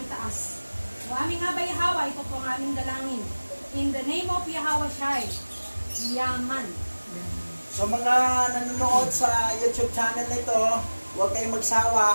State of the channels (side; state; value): both; inverted; correlation -1.00